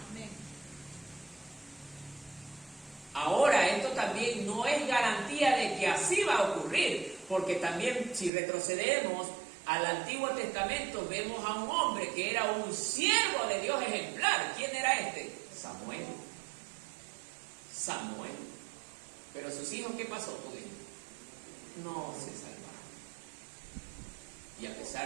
Ahora, esto también no es garantía de que así va a ocurrir, porque también si retrocedemos al Antiguo Testamento, vemos a un hombre que era un siervo de Dios ejemplar. ¿Quién era este? Samuel. Pero sus hijos, ¿qué pasó con ellos? No se salvaron. Y a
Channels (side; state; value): left; drops out; at 8.3 s